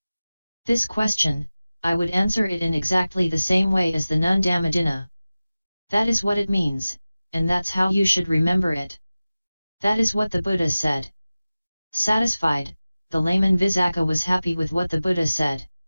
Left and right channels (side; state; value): both; inverted; correlation -0.96